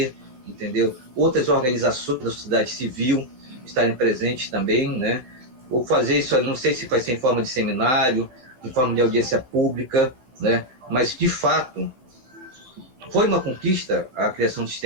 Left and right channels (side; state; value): left; late; 15 ms